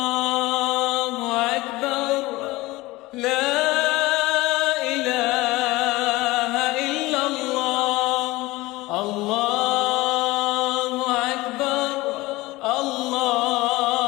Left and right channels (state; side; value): quieter; right; 20.3 dB